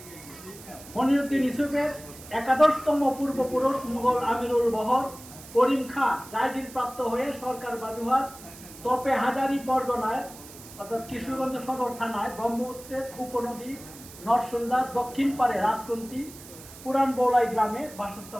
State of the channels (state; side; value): noise; right; hiss, 17 dB below the sound